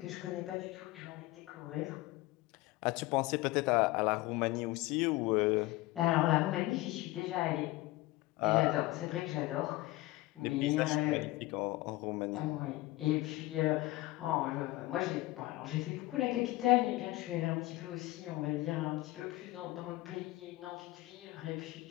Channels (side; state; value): right; quieter; 19.1 dB